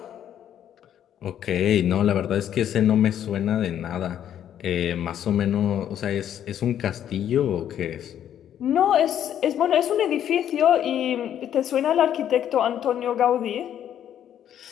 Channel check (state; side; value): quieter; right; 10.2 dB